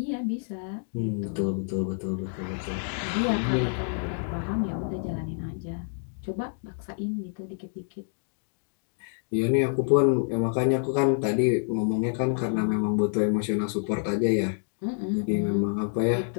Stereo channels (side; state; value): right; silent; digital silence